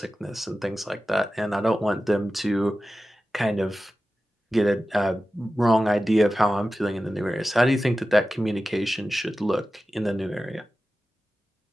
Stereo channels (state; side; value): normal; both; correlation 0.94